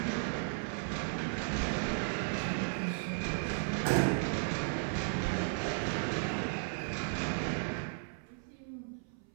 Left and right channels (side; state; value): left; silent; 54 dB below the other